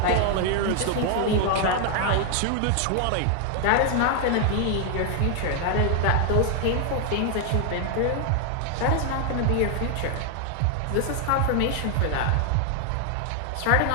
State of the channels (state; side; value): different; both; correlation 0.00